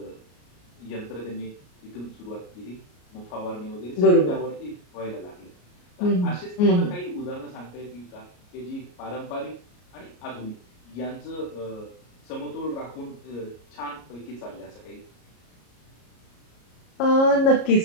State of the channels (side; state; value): right; late; 33 ms